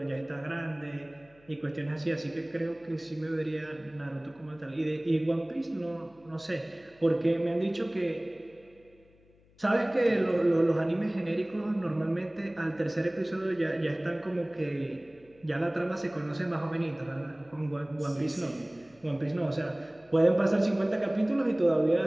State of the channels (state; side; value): noise; left; hum, 30 dB below the sound